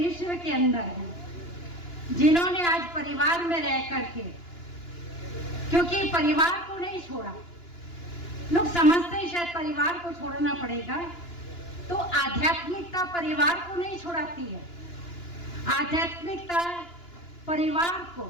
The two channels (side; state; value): right; late; 2.9 ms